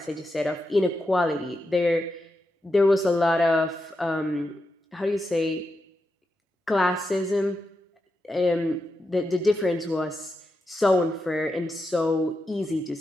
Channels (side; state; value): both; normal; correlation 0.87